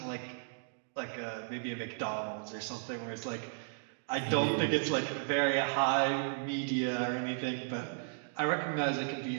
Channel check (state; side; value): silent; left; digital silence